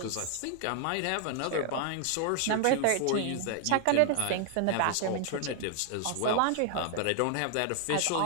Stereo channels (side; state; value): both; different; correlation 0.00